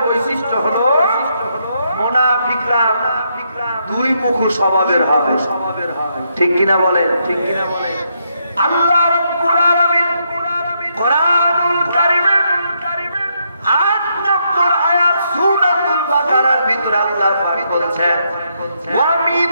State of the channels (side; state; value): both; inverted; correlation -0.78